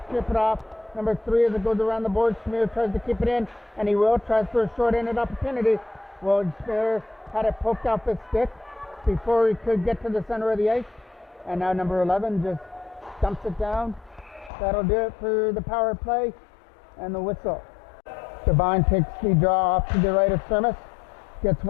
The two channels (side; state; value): right; drops out; at 14.5 s